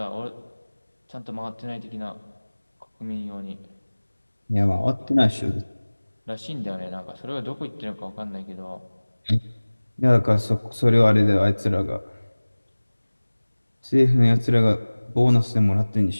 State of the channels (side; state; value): both; inverted; correlation -1.00